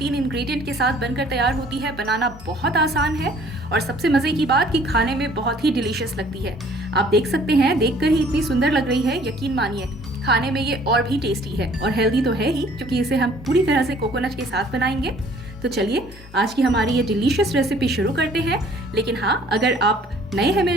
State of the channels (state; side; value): normal; both; correlation 0.56